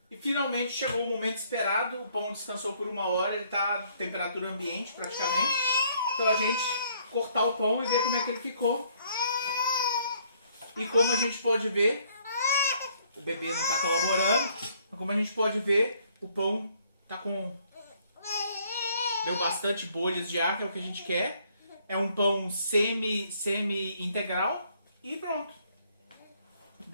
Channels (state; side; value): inverted; both; correlation -0.65